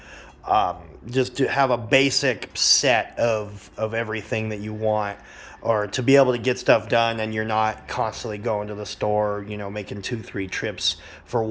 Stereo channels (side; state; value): both; identical; correlation 1.00